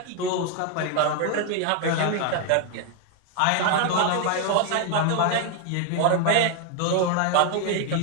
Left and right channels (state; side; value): different; both; correlation 0.00